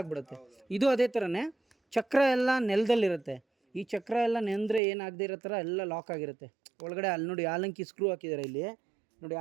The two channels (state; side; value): drops out; left; at 4.8 s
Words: ಇದು ಅದೇ ಥರನೇ ಚಕ್ರ ಎಲ್ಲ ನೆಲದಲ್ಲಿರುತ್ತೆ. ಈ ಚಕ್ರ ಎಲ್ಲ ನೆಂದರೆ ಏನಾಗದೇ ಇರೋ ಥರ ಎಲ್ಲ ಲಾಕ್ ಆಗಿರುತ್ತೆ ಒಳಗಡೆ. ಅಲ್ಲಿ ನೋಡಿ ಆಲಂಕಿ ಸ್ಕ್ರೂ ಹಾಕಿದ್ದಾರೆ, ಇಲ್ಲಿ ನೋಡಿ